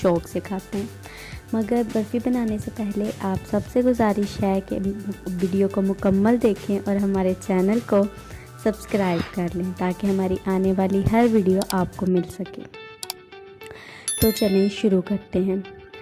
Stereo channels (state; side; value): identical; both; correlation 1.00